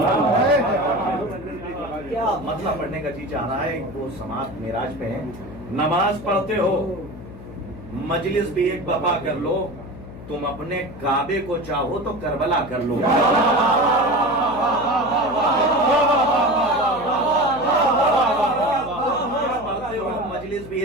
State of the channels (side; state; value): left; noise; hum, 15 dB below the sound